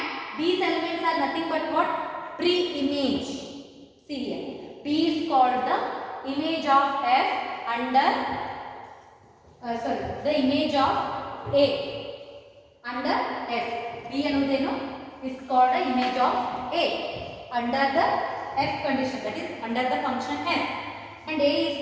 these elements are nothing but what? Pre-image. See here. B is called the image of F under, the image of A under F. B ಅನ್ನೋದೇನು is called the image of A under the F condition, that is under the function F. And A is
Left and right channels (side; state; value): both; identical; correlation 1.00